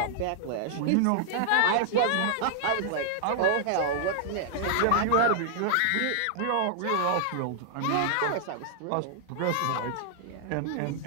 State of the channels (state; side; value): different; both; correlation -0.01